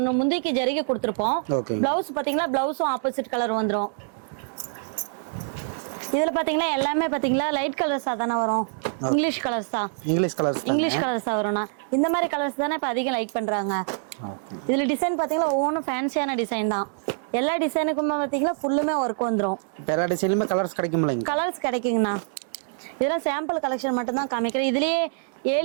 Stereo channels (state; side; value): silent; left; digital silence